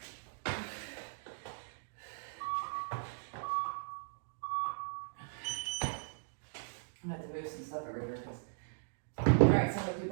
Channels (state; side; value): silent; left; digital silence